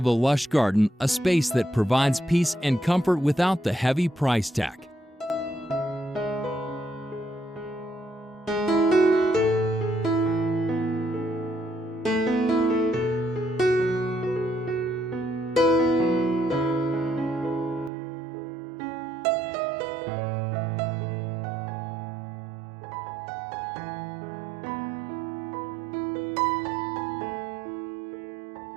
a lush garden, a space that provides peace and comfort without the heavy price tag.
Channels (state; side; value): drops out; left; at 17.9 s